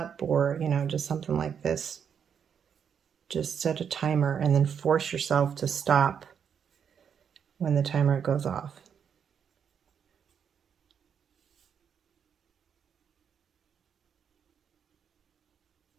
or just something like this. Just set a timer and then force yourself to stop when the timer goes off.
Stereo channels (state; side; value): quieter; left; 7.5 dB